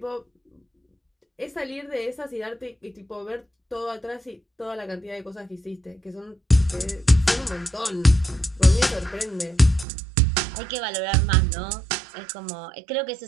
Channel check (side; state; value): left; drops out; at 9.9 s